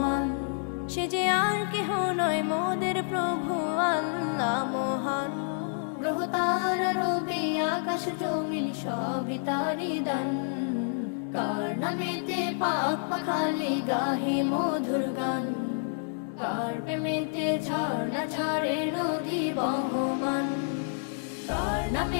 সে যে আর কেহ নয় মোদের প্রভু আল্লাহ মহান গ্রহ তারা রবি আকাশ জমিন সবই তারি দান কার নামেতে পাক পাখালি গাহে মধুর গান কার প্রেমেতে ঝর্ণা ঝরে নদী বহমান কার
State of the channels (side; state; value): right; silent; 59 dB below the other